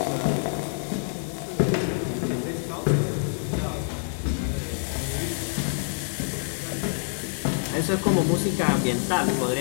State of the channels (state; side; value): silent; right; digital silence